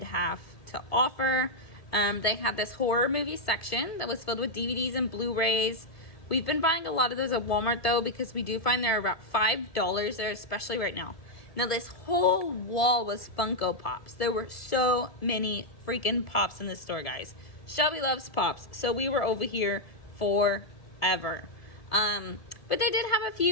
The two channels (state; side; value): late; right; 1.7 ms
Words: have to offer. They had this horror movie section that was filled with DVDs and Blu-rays. We've been buying a lot of those at Walmart though, because we do find they're about $5 there, especially right now. Now this whole wall was Funko Pops. There were so many freaking Pops in this store, guys. Shelby loves Pops, so we were over here forever. But they did have a